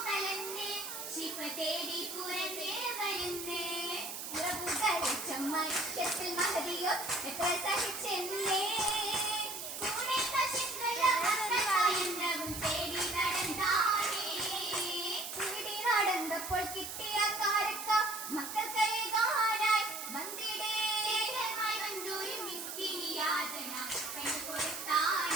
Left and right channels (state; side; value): noise; right; hiss, 7 dB below the sound